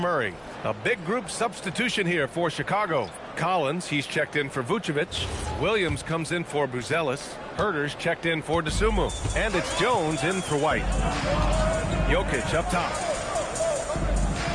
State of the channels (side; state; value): both; identical; correlation 1.00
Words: A big group substitution here for Chicago. Collins, he's checked in for Vucevic. Williams comes in for Buzelis. Herter's checked in for DeSumo. And it's Jones in for White. Jokic up top.